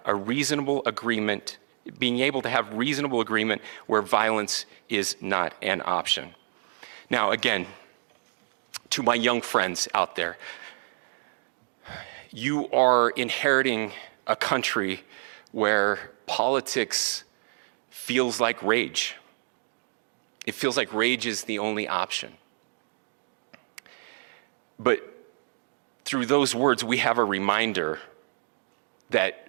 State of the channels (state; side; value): silent; left; digital silence